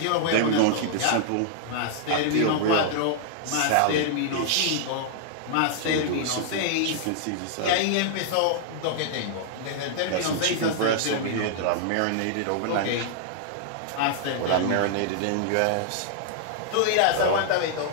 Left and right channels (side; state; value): both; different; correlation -0.01